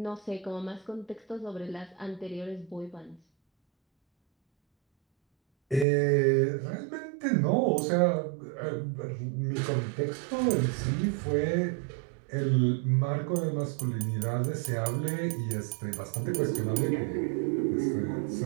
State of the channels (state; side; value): drops out; left; at 5.9 s